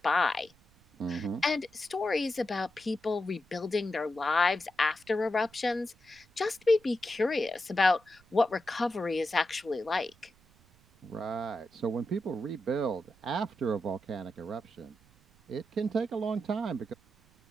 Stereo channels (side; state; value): right; noise; rumble, 30 dB below the sound